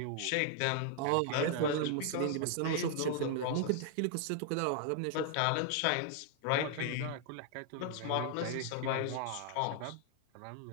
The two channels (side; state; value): both; different; correlation 0.00